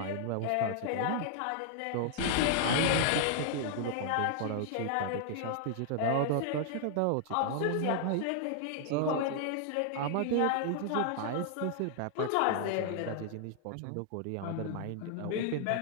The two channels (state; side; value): different; both; correlation -0.01